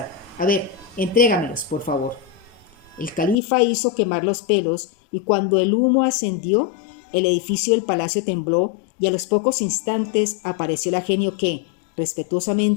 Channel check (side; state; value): right; drops out; at 3.4 s